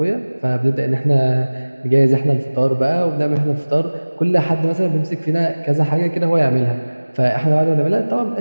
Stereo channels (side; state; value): both; inverted; correlation -1.00